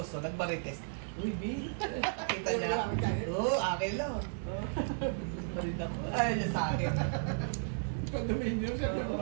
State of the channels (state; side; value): silent; left; digital silence